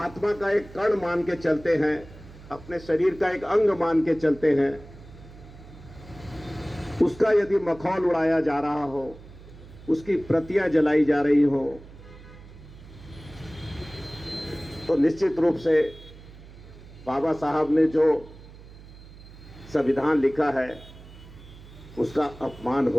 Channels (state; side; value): noise; right; hum, 19 dB below the sound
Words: का एक कण मान के चलते हैं, अपने शरीर का एक अंग मान के चलते हैं, उसका यदि मखौल उड़ाया जा रहा हो, उसकी प्रतियां जलाई जा रही हो, तो निश्चित रूप से बाबा साहब ने जो संविधान लिखा है उसका अपमान